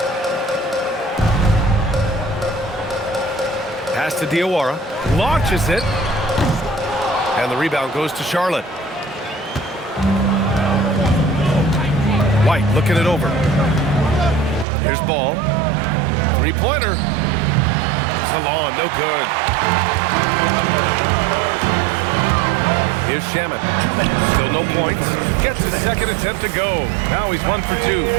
Pass to Diawara. Launches it. And the rebound goes to Charlotte. White looking it over. Here's Ball. Three-pointer. Salon, no good. Here's Shamet. Still no points. Gets his second attempt to go. Now he's 1 for 2.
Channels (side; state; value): left; drops out; at 14.7 s